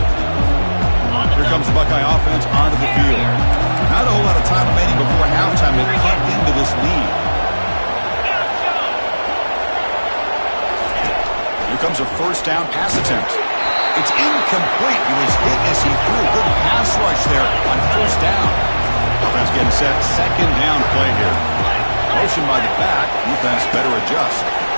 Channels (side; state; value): both; inverted; correlation -1.00